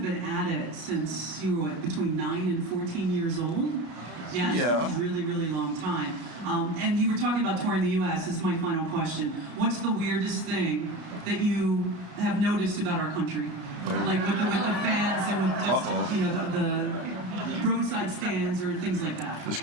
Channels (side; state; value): left; late; 33 ms